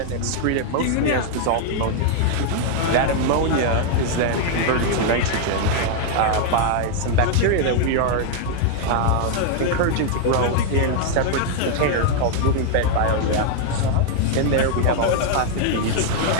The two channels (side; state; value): both; different; correlation 0.00